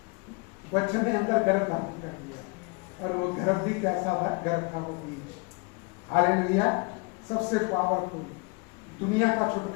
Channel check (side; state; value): right; quieter; 30.7 dB